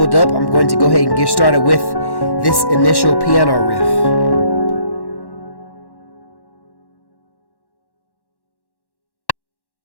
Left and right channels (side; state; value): right; late; 1.1 ms